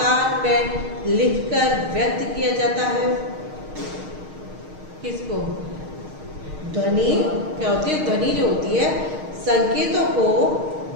में लिखकर व्यक्त किया जाता है। किसको? ध्वनि क्या होती है? ध्वनि जो होती है संकेतों को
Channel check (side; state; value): left; late; 6.5 ms